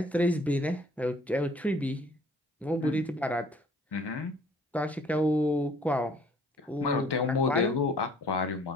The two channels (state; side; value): normal; both; correlation 0.56